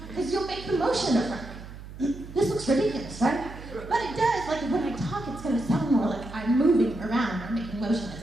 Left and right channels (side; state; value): right; noise; hum, 14 dB below the sound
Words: Because you'll make the motion of like, this looks ridiculous, right? But it does, like when I talk, it's going to sound more like I'm moving around or making motion